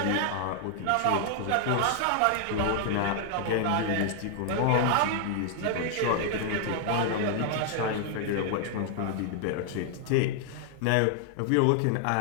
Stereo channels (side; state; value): both; different; correlation 0.00